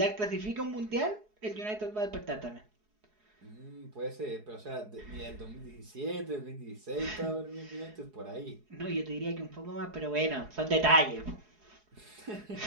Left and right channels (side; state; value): left; late; 4.7 ms